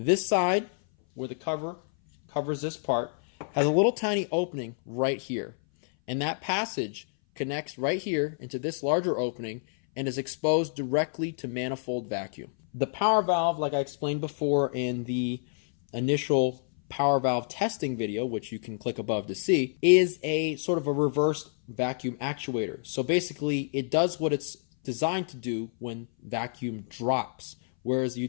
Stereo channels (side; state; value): right; silent; 58 dB below the other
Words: side, where the cover covers this part, has a little tiny opening right here, and that passage connects right here into this larger opening and is exposed directly to manifold vacuum. The power valve, like I explained before in the initial power valve testing video, which you can click above to see, is a sort of a reversed vacuum actuator. So basically it does what it's designed to do when vacuum drops, whereas you